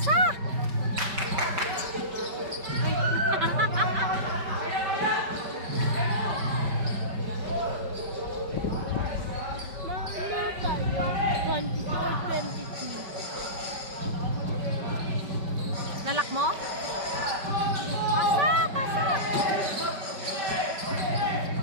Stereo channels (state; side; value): late; left; 5.2 ms